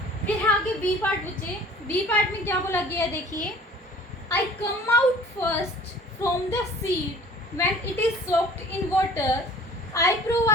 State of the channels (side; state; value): both; normal; correlation 0.49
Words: फिर आगे बी पार्ट बच्चे। बी पार्ट में क्या बोला गया है? देखिए, I come out first from the seed when it is soaked in water, I